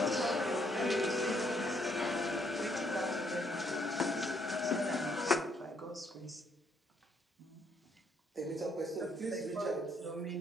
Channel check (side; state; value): both; normal; correlation 0.70